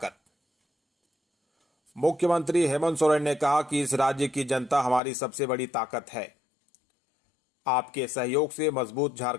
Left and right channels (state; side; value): drops out; right; at 5.0 s